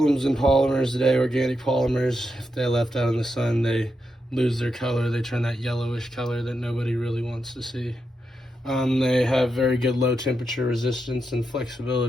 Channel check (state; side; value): normal; both; correlation 0.85